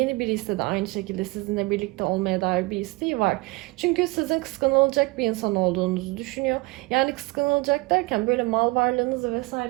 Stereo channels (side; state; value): left; quieter; 24.6 dB